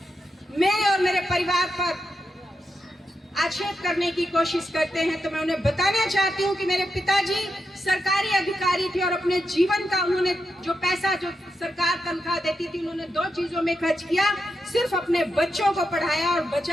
मेरे और मेरे परिवार पर आक्षेप करने की कोशिश करते हैं तो मैं उन्हें बताना चाहती हूँ कि मेरे पिताजी सरकारी अधिकारी थे और अपने जीवन का उन्होंने जो पैसा, जो सरकार तनख्वाह देती थी, उन्होंने दो चीजों में खर्च किया, सिर्फ अपने बच्चों को पढ़ाया और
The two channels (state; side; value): normal; both; correlation 0.86